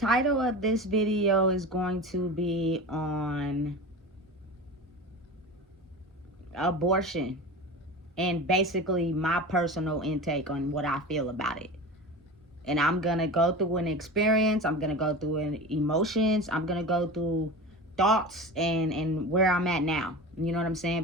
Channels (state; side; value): normal; both; correlation 0.30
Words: of this video is going to be on abortion and basically my personal intake on what I feel about it. And I'm gonna go through an experience, I'm gonna go through emotions, I'm gonna go through thoughts and where I'm at now. You know what I'm saying?